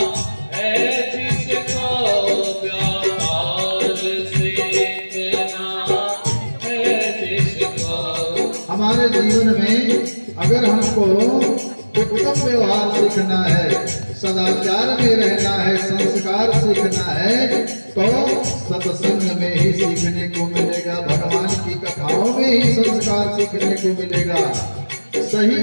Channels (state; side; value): inverted; both; correlation -1.00